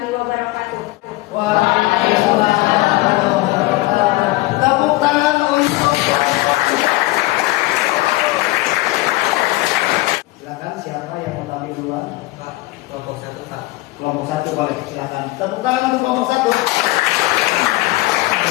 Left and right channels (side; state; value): right; quieter; 19.8 dB